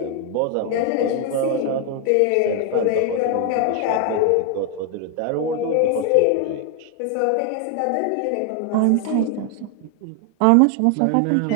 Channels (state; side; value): different; both; correlation 0.00